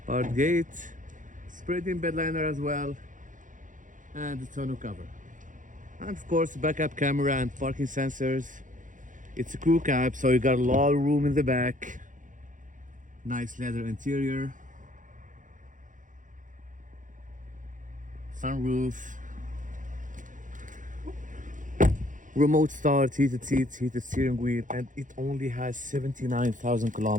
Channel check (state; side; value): late; left; 0.38 ms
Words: powered gate, sprayed in bed liner as well, and a tonneau cover. And of course backup camera and parking sensors. It's a crew cab, so you got a lot of room in the back. Nice leather interior. Sunroof. Remote start, heated seats, heated steering wheel, and it only has 79,000